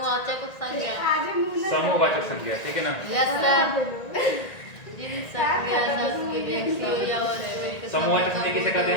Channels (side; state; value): right; late; 1.9 ms